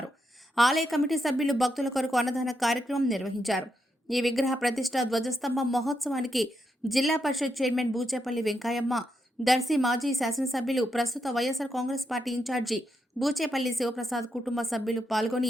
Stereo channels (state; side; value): normal; both; correlation 0.82